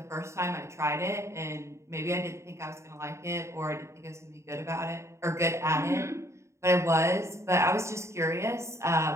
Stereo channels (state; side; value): late; left; 0.14 ms